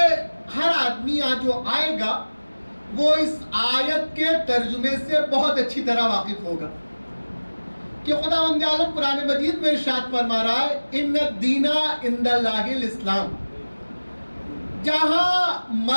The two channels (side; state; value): both; inverted; correlation -1.00